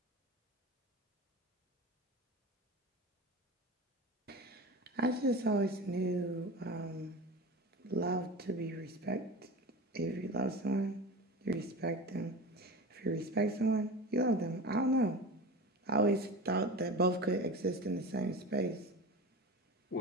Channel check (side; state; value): both; normal; correlation 0.30